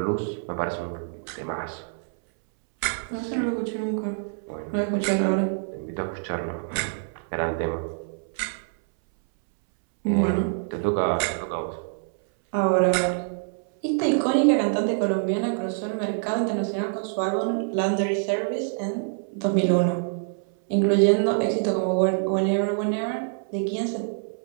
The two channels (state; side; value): silent; left; 61 dB below the other